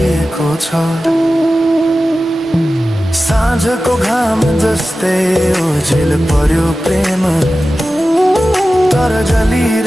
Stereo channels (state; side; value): normal; both; correlation 0.94